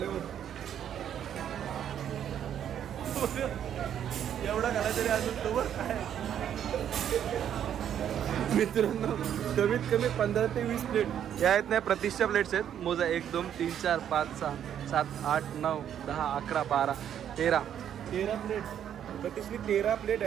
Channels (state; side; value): quieter; left; 9.6 dB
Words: एवढा घाला तरी अजून तो काय मित्रांनो कमीत कमी 15 ते 20 प्लेट या आहेत नाही. प्रतिष्ठा प्लेट्स आहेत. मोजा 1 2 3 4 5 6 7 8 9 10 11 12 13 प्लेट. प्रतिष्ठी 13 प्लेट